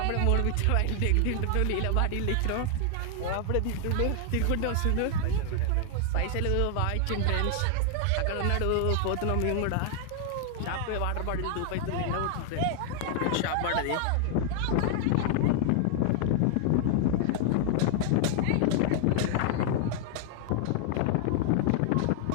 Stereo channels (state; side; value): different; both; correlation 0.00